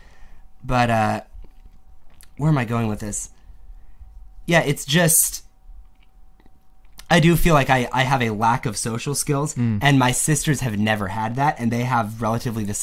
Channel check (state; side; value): identical; both; correlation 1.00